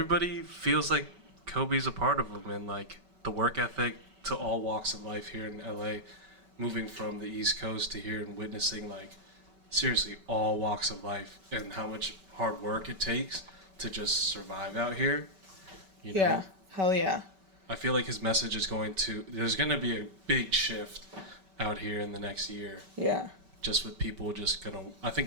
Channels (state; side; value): late; left; 5.2 ms